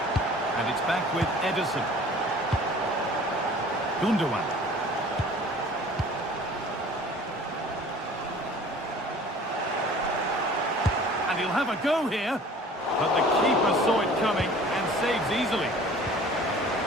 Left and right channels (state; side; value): normal; both; correlation 0.47